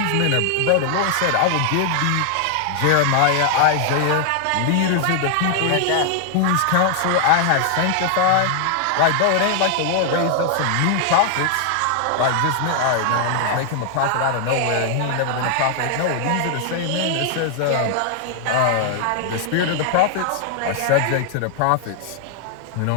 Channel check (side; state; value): both; different; correlation 0.00